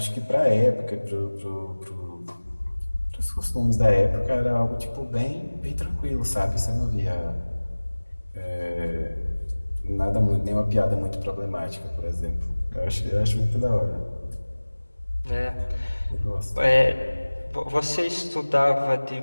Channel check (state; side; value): inverted; both; correlation -1.00